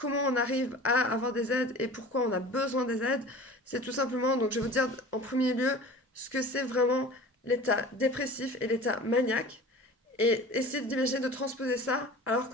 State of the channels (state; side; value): normal; both; correlation 0.40